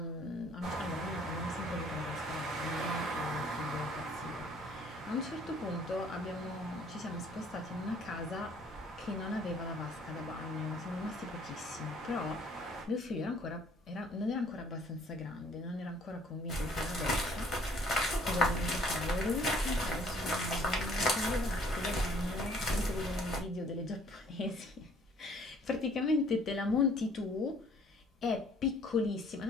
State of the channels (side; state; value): both; normal; correlation 0.58